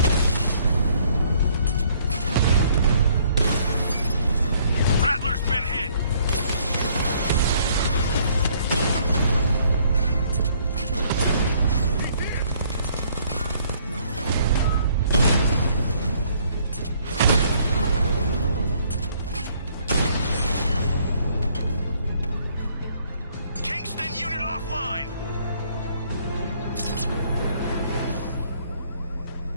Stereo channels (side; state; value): both; inverted; correlation -0.63